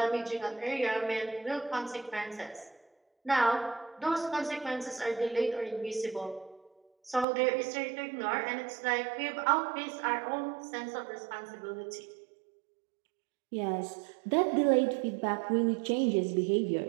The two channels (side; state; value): left; drops out; at 7.2 s